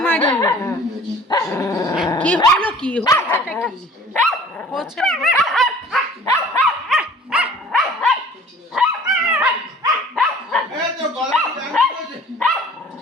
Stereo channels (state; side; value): normal; both; correlation 0.49